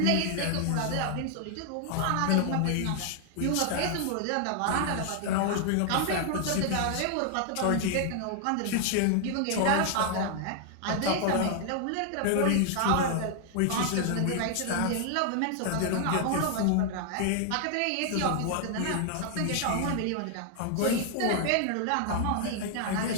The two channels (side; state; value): both; different; correlation 0.00